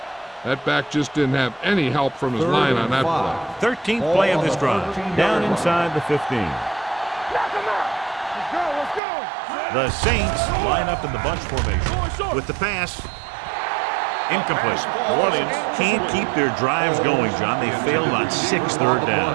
That back just didn't have any help from his line on that play. 13th play of this drive. Down inside the 15. Knock him out. Let's go, let's go. The Saints line up in the bunch formation. With the pass, incomplete. New Orleans can't keep their drives going, John. They failed on 6 third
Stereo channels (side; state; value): left; drops out; at 9.0 s